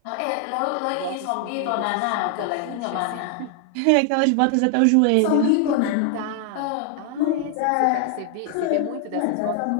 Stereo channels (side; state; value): both; different; correlation 0.00